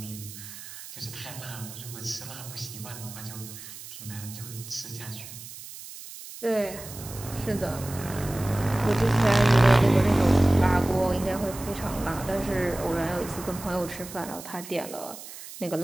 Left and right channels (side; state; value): right; noise; hiss, 13 dB below the sound